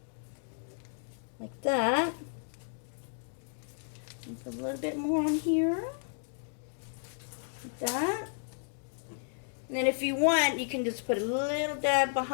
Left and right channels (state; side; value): silent; right; digital silence